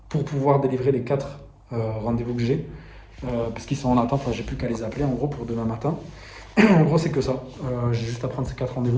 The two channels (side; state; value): both; identical; correlation 1.00